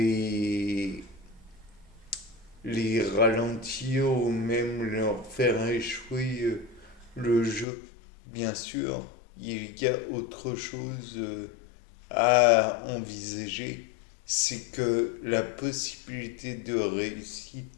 les ralentir ou même leur faire échouer le jeu. Bien sûr, il y a autre chose à envisager, c'est que la possibilité de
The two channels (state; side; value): drops out; right; at 7.7 s